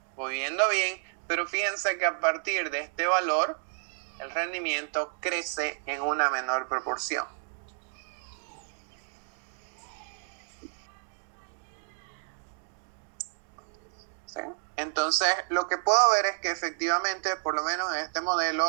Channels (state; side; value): silent; left; digital silence